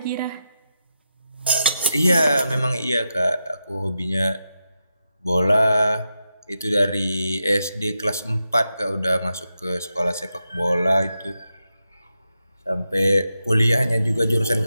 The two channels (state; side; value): inverted; both; correlation -0.88